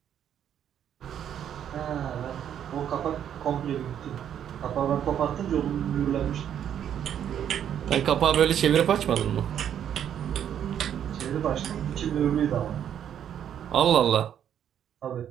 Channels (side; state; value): left; quieter; 9.5 dB